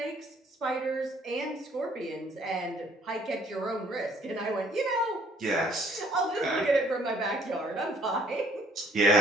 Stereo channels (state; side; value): normal; both; correlation 0.61